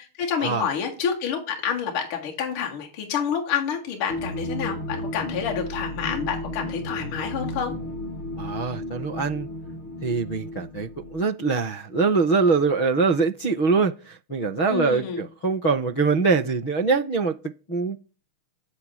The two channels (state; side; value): late; right; 6.2 ms